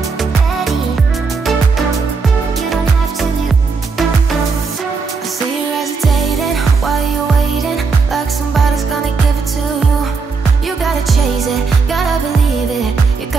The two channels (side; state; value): left; quieter; 4.7 dB